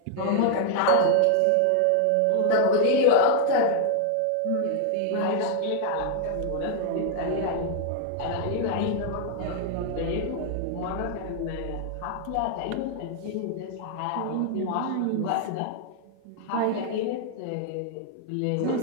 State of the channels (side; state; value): both; different; correlation 0.00